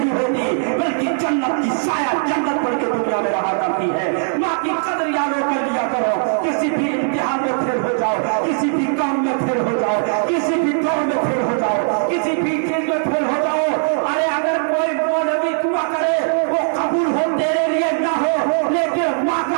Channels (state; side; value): silent; left; digital silence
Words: होती बल्कि जन्नत की साया जन्नत पढ़ के दुनिया में रहा करती है। माँ की कदर याद कर लिया करो, किसी भी इम्तिहान में फेल हो जाओ, किसी भी काम में फेल हो जाओ, किसी भी दौड़ में फेल हो जाओ, किसी भी चीज में फेल हो जाओ, अरे अगर कोई मौलवी दुआ करे वो कबूल हो तेरे लिए ना हो, लेकिन माँ